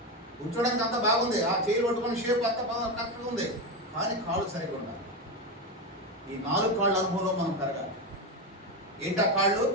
కూర్చోడానికి అంతా బాగుంది, ఆ చేయి పట్టుకుని షేప్ అంతా బాగా కరెక్ట్గా ఉంది, కానీ కాళ్ళు సరిగా ఉండాలి. ఈ 4 కాళ్ళ అనుభవంలో మనం పెరగాలి. ఏంటా కాళ్ళు?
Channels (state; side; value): normal; both; correlation 0.15